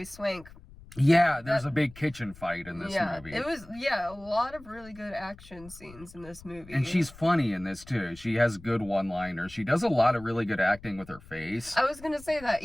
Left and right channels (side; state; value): left; noise; rumble, 20 dB below the sound